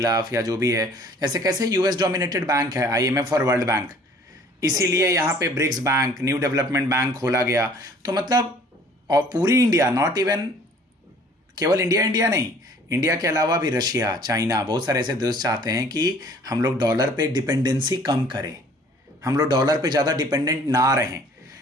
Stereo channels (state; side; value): normal; both; correlation 0.54